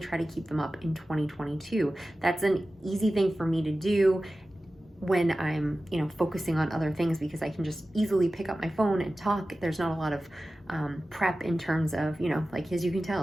to keep them up in 2022. That's an easy thing for me to do when I'm, focusing on other things, because I can just easily pick up my phone and talk. There's not a lot of prep in terms of, like, as you can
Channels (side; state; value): both; normal; correlation 0.95